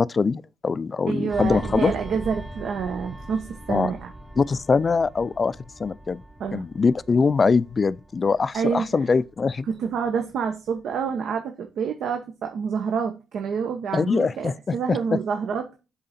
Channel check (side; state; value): both; normal; correlation 0.84